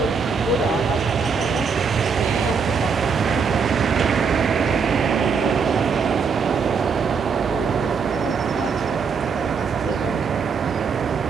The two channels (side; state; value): left; quieter; 5.7 dB